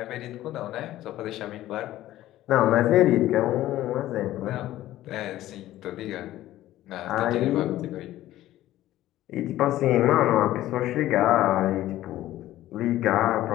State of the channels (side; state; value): right; quieter; 14.5 dB